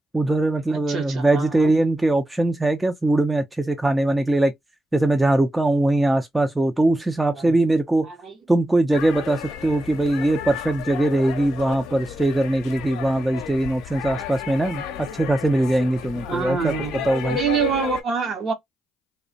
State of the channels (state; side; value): normal; both; correlation 0.88